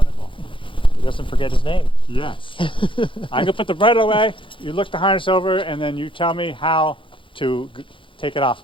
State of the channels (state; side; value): late; right; 0.25 ms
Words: He doesn't forget his name. Yes. I'm gonna put the bridle away. You look the harness over, and then you tell me how to take it off